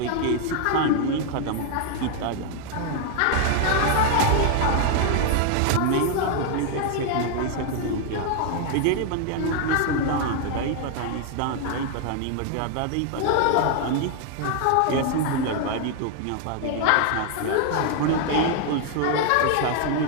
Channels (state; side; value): different; both; correlation 0.00